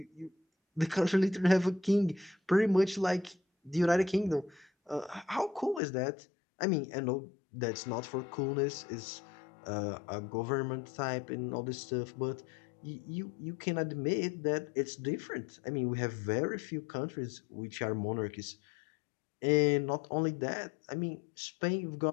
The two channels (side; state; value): right; drops out; at 5.8 s